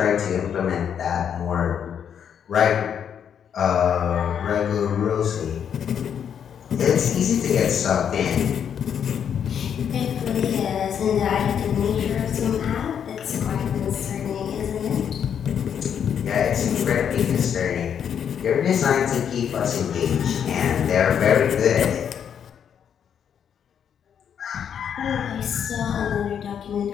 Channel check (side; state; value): right; quieter; 8.3 dB